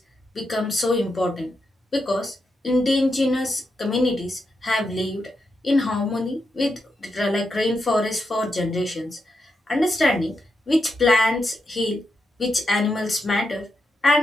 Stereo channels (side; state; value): both; normal; correlation 0.85